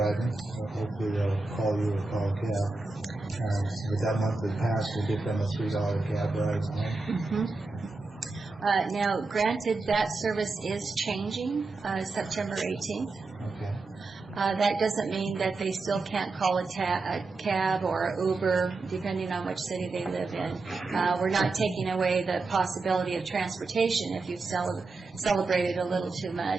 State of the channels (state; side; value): quieter; left; 3.7 dB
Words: hopefully they'll call you or call a cab. With that monthly pass, we'll get them a $3 cab ride home. Now, granted, that service is changing September 18th. Okay. That doesn't mean that they still can't call a cab or an Uber, depending on which city they live in. We're not taking away the possibility of transportation if you've celebrated a little too